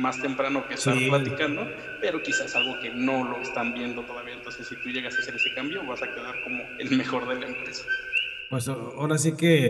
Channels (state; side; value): identical; both; correlation 1.00